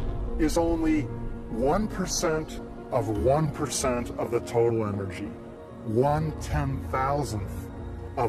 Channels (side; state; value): both; identical; correlation 1.00